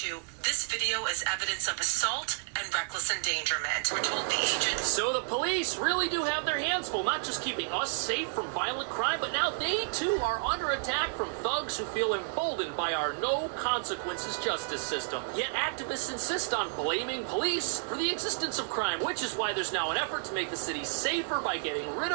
this video is evidence of assault and reckless endangerment. We're told the agent. So the police really do have their hands full, not just keeping us safe from violent crime, but now they too are under attack from thugs who feel emboldened by our no consequences justice system. Yet activists insist on blaming police for the existence of crime, which is why there's now an effort to make the city safer by getting rid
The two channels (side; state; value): left; silent; 57 dB below the other